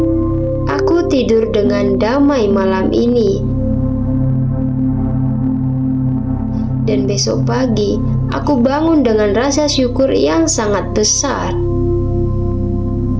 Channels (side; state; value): both; identical; correlation 1.00